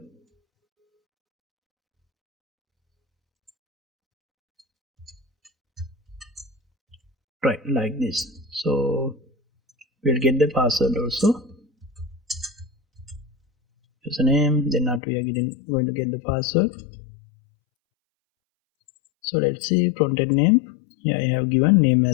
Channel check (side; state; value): right; drops out; at 15.0 s